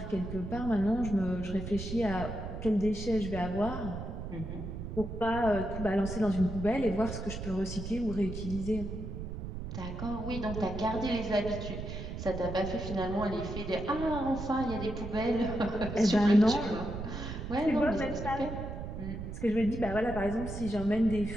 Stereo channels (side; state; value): right; noise; rumble, 7 dB below the sound